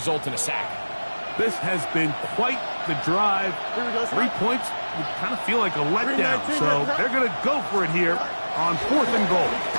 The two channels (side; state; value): both; inverted; correlation -1.00